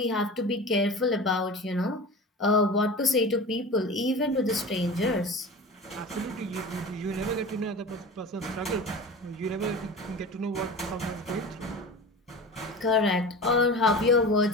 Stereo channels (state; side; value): normal; both; correlation 0.33